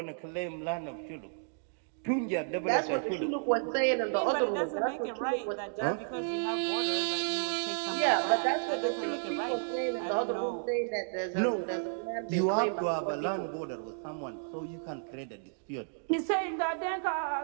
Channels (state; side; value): silent; left; digital silence